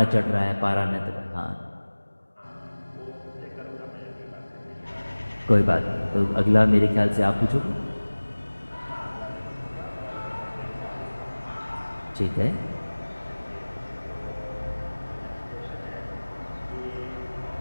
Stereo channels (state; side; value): inverted; both; correlation -1.00